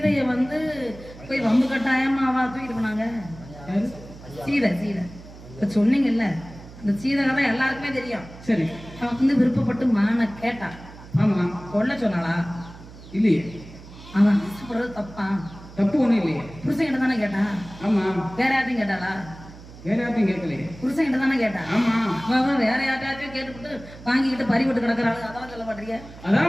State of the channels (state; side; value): noise; right; hum, 17 dB below the sound